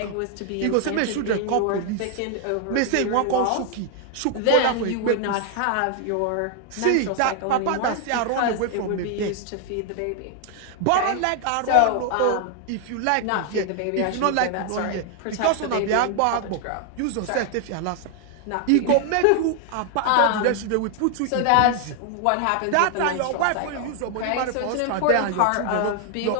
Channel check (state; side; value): different; both; correlation 0.00